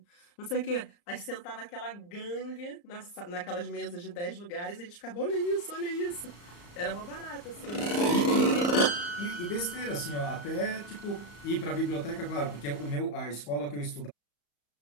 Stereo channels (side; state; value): right; late; 34 ms